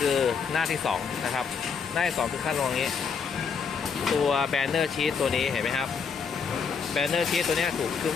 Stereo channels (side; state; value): right; quieter; 6.0 dB